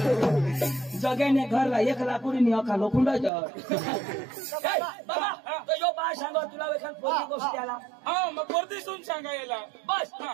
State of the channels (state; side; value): drops out; left; at 3.3 s